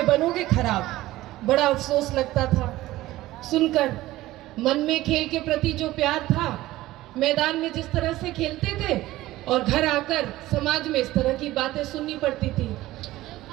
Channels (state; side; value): quieter; left; 16.7 dB